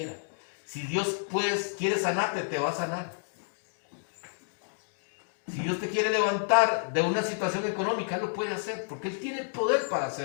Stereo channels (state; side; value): silent; right; digital silence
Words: Si Dios quiere sanarte, te va a sanar. Si Dios te quiere levantar de una situación económica, Él lo puede hacer, porque Él tiene el poder para